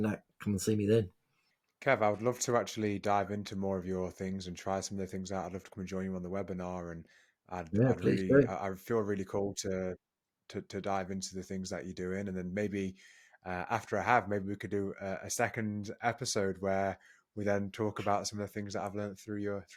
that, come and see me then. Kev, I would love to actually dive into more of your things and try some of the things out. I'd love to come and join you on the webinar, and Yeah, I'd please really, do. I feel really cool to dive into the things that you're doing, and then maybe after I have, maybe we could do a second episode where we then talk about some of the things that I've learned through your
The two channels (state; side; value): identical; both; correlation 1.00